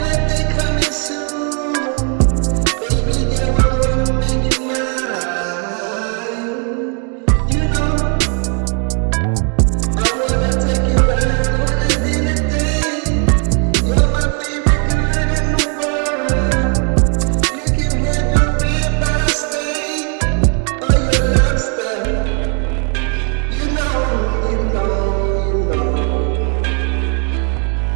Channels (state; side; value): quieter; left; 39.8 dB